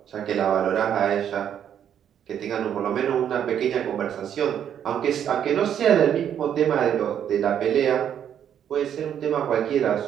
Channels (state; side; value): quieter; left; 9.3 dB